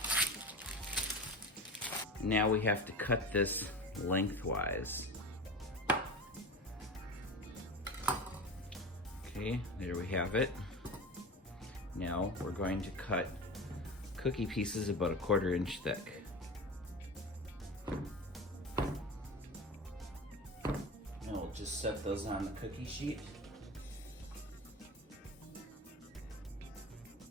Now we have to cut this lengthwise. Okay, there we have it. Now we're going to cut cookie pieces about 1/4 inch thick. Now we'll just set those on the cookie sheet.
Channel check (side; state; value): both; normal; correlation 0.29